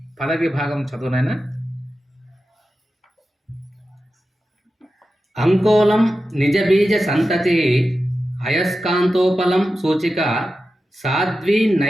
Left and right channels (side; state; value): both; normal; correlation 0.92